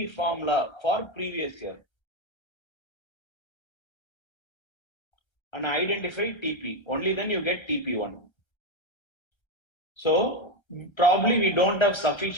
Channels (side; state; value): right; late; 1.3 ms